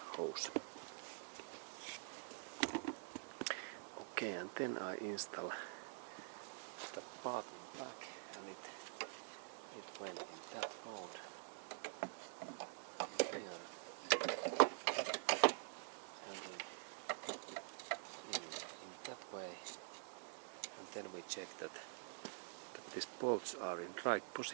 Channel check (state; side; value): silent; left; digital silence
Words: hose. Okay, and then I install the part in back, and it went in that road here, and in that way, and then we check that these bolts are in right